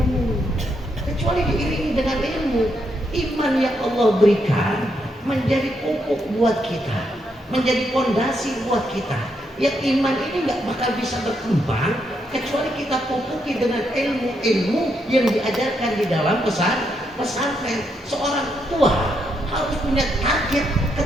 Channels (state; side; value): normal; both; correlation 0.79